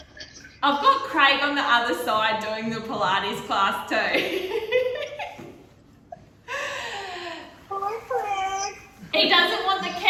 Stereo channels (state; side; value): identical; both; correlation 1.00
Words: I've got Craig on the other side doing the Pilates class too. Hi, Craig. He doesn't want the